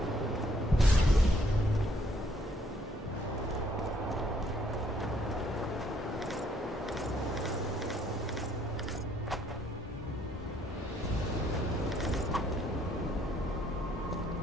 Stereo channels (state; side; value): normal; both; correlation 0.67